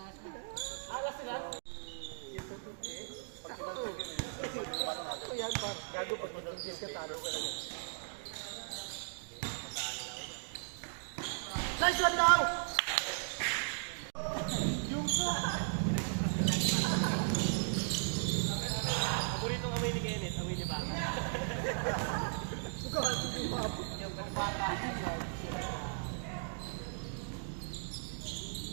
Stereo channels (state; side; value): silent; left; digital silence